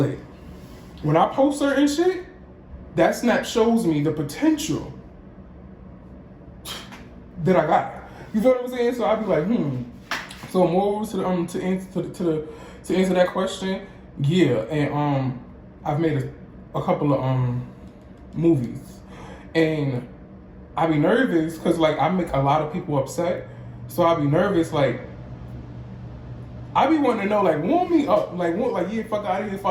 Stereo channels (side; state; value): both; identical; correlation 1.00